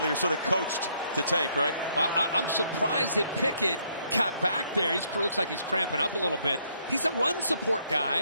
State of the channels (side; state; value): both; inverted; correlation -0.70